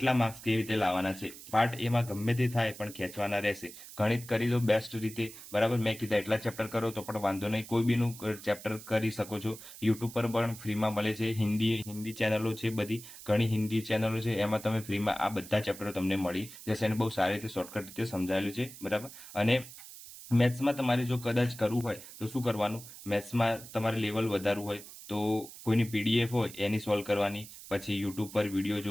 માર્ક્સ કેવી રીતે લાવવાના છે. પાર્ટ એમાં ગમે તે થાય પણ ખેંચવાના રહેશે. ગણિત કરી દો બેસ્ટ રીતે, બરાબર. મેં કીધા એટલા ચેપ્ટર કરો તો પણ વાંધો નહીં. કોઈ બીનું ચેપ્ટર કરી શકો છો. યુટ્યુબ પર પણ ફ્રીમાં મળે છે. હિન્દી ચેનલો છે, બધી ઘણી હિન્દી ચેનલો છે, એમાં તમે ફ્રીમાં આ બધા ચેપ્ટરો તમને મળી જશે. અને બહુ સારી રીતે શોર્ટકટ રીતે સમજાયેલું છે, બરાબર. અને મેથ્સમાં તમારે જો કદાચ કરવું હોય તો શું કરવાનું? મેથ્સમાં તમારે લેવલ વધારવું હોય તો કોઈની પીડીએફ હોય એની સોલ્વ કરવાની, પછી યુટ્યુબ પર વિડીયો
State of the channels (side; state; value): right; noise; hiss, 15 dB below the sound